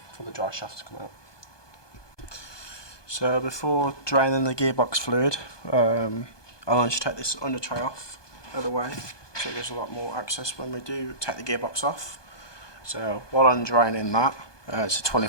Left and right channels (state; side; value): late; right; 1.2 ms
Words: for the dry shaft to come out. So before draining the gearbox fluid, I'll just take this under tray off out of the way, so there's a lot more access when we do take the gearbox off. So while I'm draining that, it's a